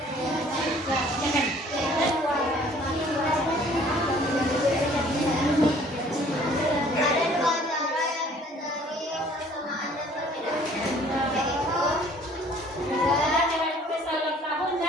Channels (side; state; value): both; normal; correlation 0.55